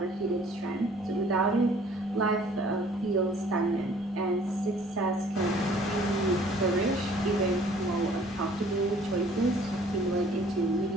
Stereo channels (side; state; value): both; normal; correlation 0.55